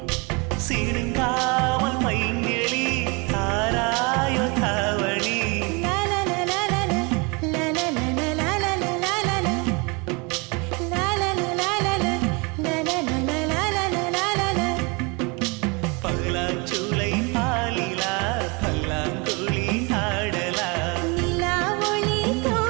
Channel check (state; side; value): quieter; left; 29.5 dB